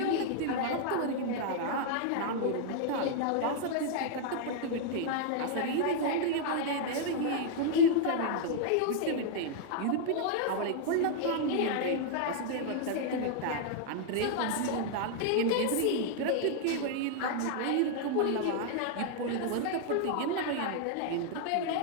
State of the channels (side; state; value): both; different; correlation -0.01